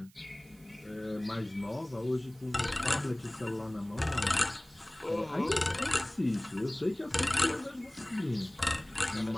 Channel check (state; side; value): noise; right; hiss, 27 dB below the sound